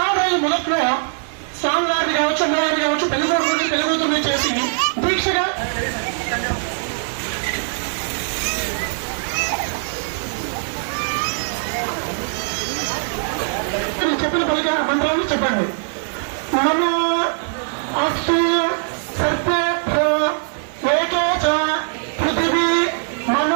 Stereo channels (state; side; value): silent; left; digital silence